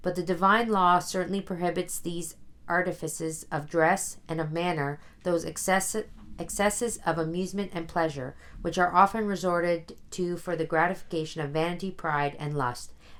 But the divine law certainly prohibits these artifices of dress and of manner, those excesses of amusement and pleasure, which are often resorted to for the gratification of vanity, pride, and lust,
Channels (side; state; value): both; identical; correlation 1.00